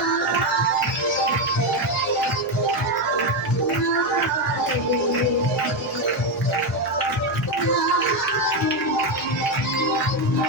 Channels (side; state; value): left; noise; hum, 27 dB below the sound